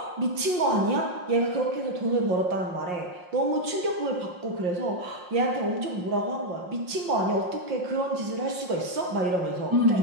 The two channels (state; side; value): late; left; 5.6 ms